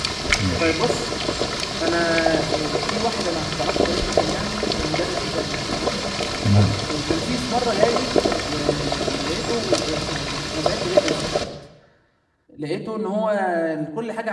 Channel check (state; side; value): identical; both; correlation 1.00